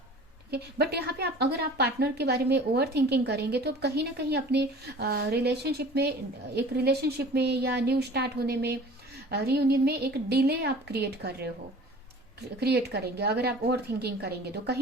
ठीक है, बट यहाँ पे आप अगर आप पार्टनर के बारे में ओवर थिंकिंग करेंगे तो कहीं ना कहीं अपने रिलेशनशिप में, एक रिलेशनशिप में या न्यू स्टार्ट होने में, रियूनियन में एक डिले आप क्रिएट करेंगे। अगर आप ओवर थिंकिंग करेंगे तो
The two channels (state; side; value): normal; both; correlation 0.44